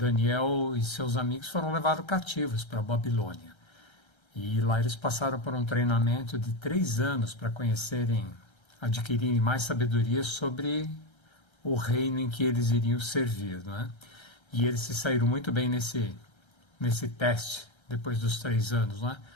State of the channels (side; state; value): right; late; 1.3 ms